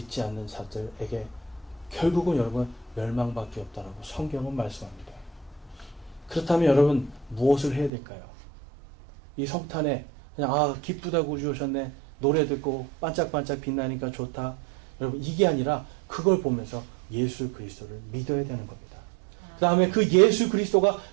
않는 자들에게 결국은 여러분 멸망밖에 없다라고 성경은 말씀합니다. 그렇다면 여러분 무엇을 해야 될까요? 이 성탄에 그냥 기쁘다고 우리 오셨네. 노래 듣고 반짝반짝 빛나니까 좋다. 여러분 이게 아니라 그걸 보면서 예수 그리스도를 믿어야 되는 겁니다. 그 다음에 그 예수 그리스도가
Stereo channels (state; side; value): drops out; left; at 7.9 s